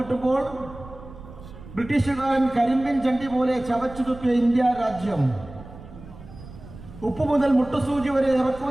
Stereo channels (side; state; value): right; noise; rumble, 16 dB below the sound